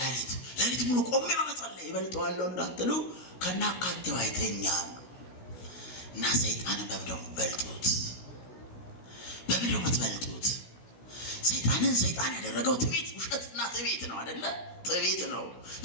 ሌሊት ሙሉ ቆሜ በመጸለይ እበልጠዋለሁ እንዳትሉ፣ ከናካቴው አይተኛም። እና ሰይጣንን በምንድነው የምትበልጡት? ሰይጣንን ሰይጣን ያደረገው ትዕቢት፣ ውሸትና ትዕቢት ነው አይደለ? ትዕቢት ነው፣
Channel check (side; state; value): right; late; 16 ms